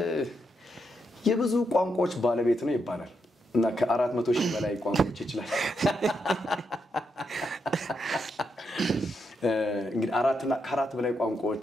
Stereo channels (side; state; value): both; normal; correlation 0.81